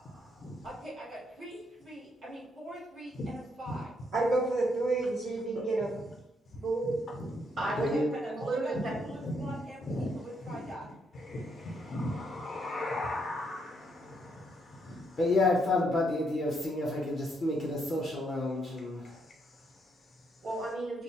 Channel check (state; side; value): normal; both; correlation 0.75